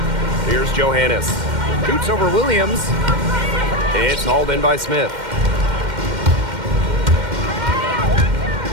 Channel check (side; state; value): left; late; 2.1 ms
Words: Here's Johannes. Shoots over Williams. It's hauled in by Smith.